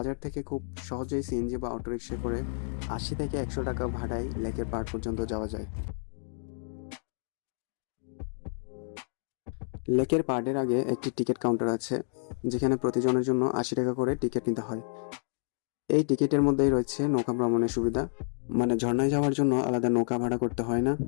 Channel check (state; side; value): silent; right; digital silence